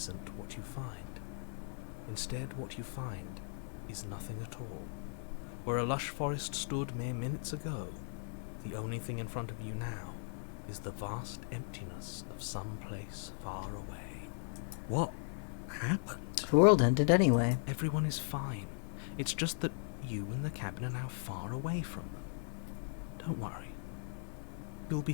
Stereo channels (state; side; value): silent; right; 52 dB below the other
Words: what you find. Instead, what you find is nothing at all. Where a lush forest stood mere minutes ago, the only thing in front of you now is the vast emptiness of some place far away. What happened? The world ended anyway. Everyone is fine. It's just that you and the cabin are now far away from them. Don't worry. You'll be